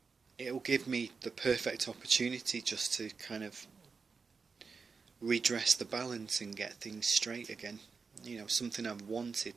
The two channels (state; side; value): quieter; left; 5.0 dB